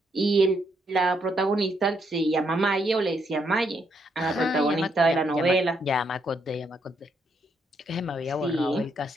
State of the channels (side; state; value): both; normal; correlation 0.76